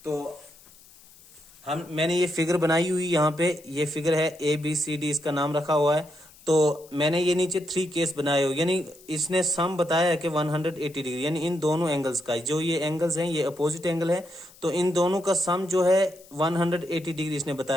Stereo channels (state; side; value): noise; left; hiss, 24 dB below the sound